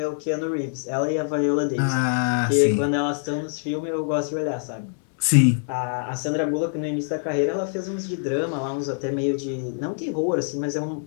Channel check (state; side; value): silent; right; digital silence